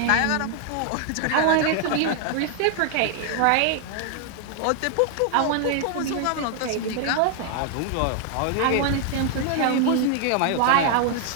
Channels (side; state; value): both; different; correlation 0.00